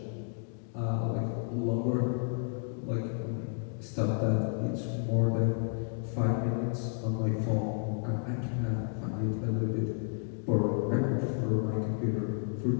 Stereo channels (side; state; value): right; silent; 57 dB below the other